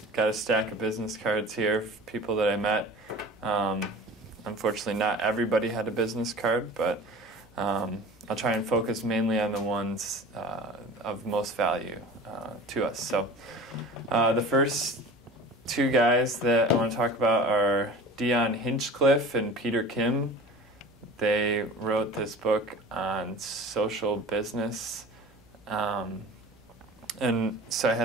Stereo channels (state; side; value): normal; both; correlation 0.38